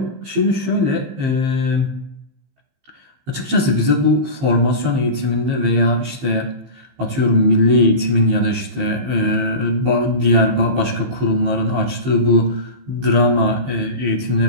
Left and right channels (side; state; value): left; late; 15 ms